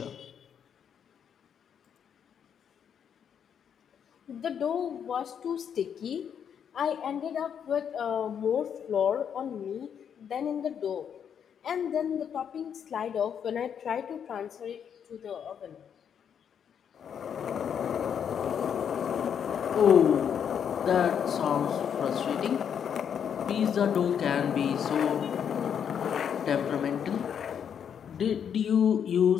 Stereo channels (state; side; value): quieter; right; 8.1 dB